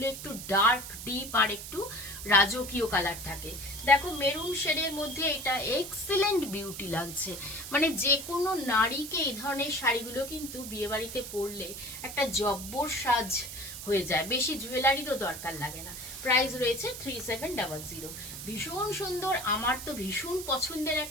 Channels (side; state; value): right; noise; hiss, 10 dB below the sound